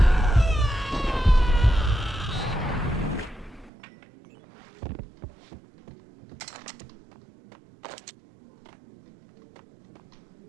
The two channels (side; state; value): left; drops out; at 3.7 s